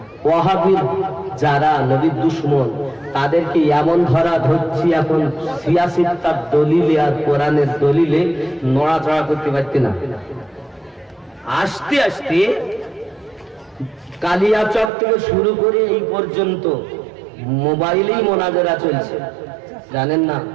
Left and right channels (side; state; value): left; drops out; at 14.9 s